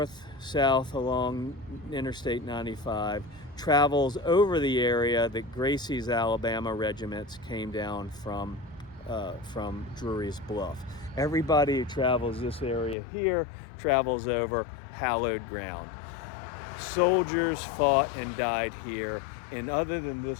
along Interstate 95 travels over the area that Gracie's Alabama regiments came down from Drury's Bluff. Everybody who travels this area here travels over hallowed ground. Soldiers fought and died here, and other than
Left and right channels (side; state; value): right; drops out; at 13.0 s